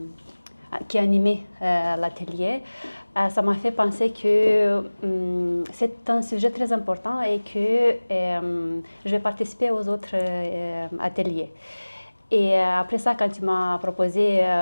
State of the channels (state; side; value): inverted; both; correlation -1.00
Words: qui animait l'atelier, ça m'a fait penser que c'est un sujet très important et que je vais participer aux autres ateliers. Et après ça, quand tu m'as proposé